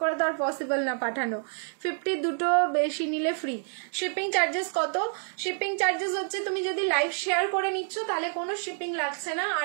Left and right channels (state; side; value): silent; left; 56 dB below the other